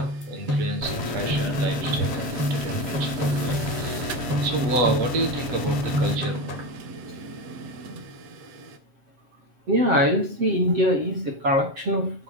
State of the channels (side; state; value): left; late; 7.7 ms